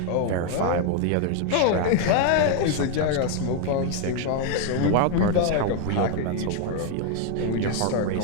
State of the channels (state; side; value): different; both; correlation 0.01